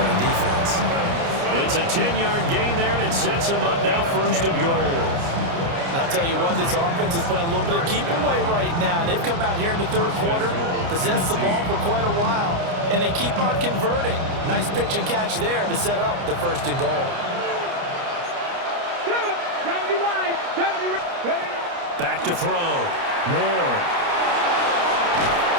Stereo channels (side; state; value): left; late; 29 ms